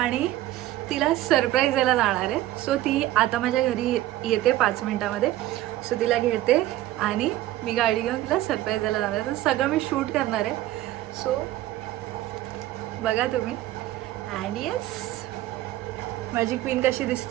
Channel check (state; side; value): quieter; left; 15.1 dB